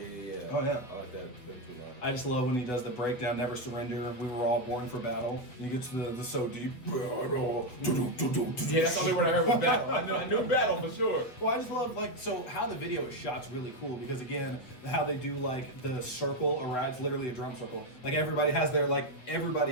Yeah. Oh, yeah. I like that. I just love when he does the breakdown, never surrender. We were all born for battle. And he gets the so deep. Yeah, that's the only word I heard was battle. I knew battle for sure. Well, I just love so how the video is shot's really cool because again, how they do like the circle around, it's literally a drum circle. Like everybody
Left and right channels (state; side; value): late; right; 7.9 ms